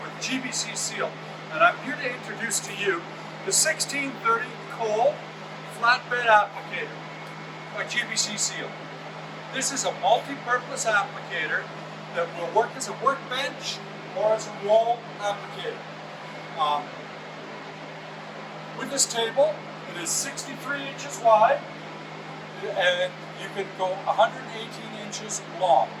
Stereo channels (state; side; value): identical; both; correlation 1.00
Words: GBC SEAL, and I'm here to introduce to you the 1630 Cole Flatbed Applicator by GBC SEAL. This is a multi-purpose applicator that will work as a workbench or as a wall applicator. With this table, it is 63 inches wide, and you can go 118 inches long